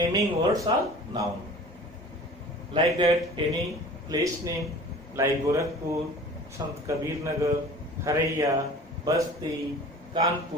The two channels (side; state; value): both; normal; correlation 0.43